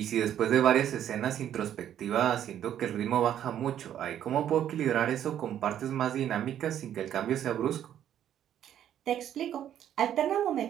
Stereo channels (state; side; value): quieter; left; 10.6 dB